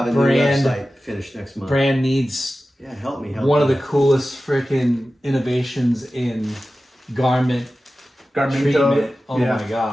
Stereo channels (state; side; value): normal; both; correlation 0.95